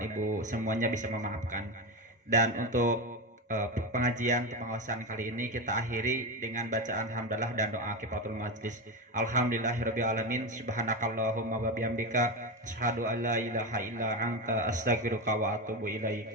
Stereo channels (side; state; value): both; normal; correlation 0.17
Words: Ibu semuanya bisa memaafkan. Dan untuk pengajian pengawasan kali ini kita akhiri dengan bacaan hamdalah dan doa kifaratul majlis. Alhamdulillahirabbil alamin, subhanakallahumma wa bihamdika asyhadu an la ilaha illa anta astaghfiruka wa atubu ilaik.